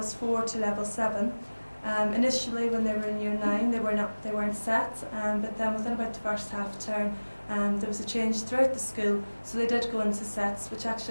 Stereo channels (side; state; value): both; inverted; correlation -1.00